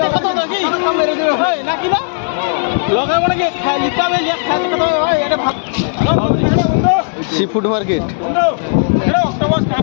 Sea food market.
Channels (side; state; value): right; silent; digital silence